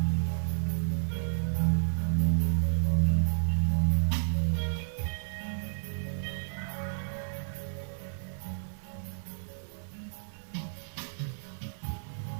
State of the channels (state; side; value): silent; left; digital silence